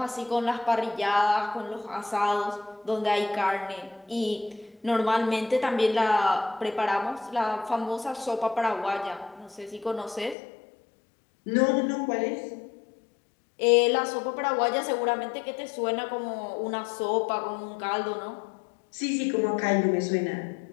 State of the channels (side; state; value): right; drops out; at 10.4 s